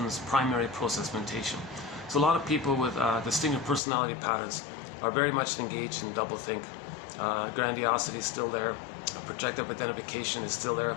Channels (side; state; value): right; drops out; at 3.8 s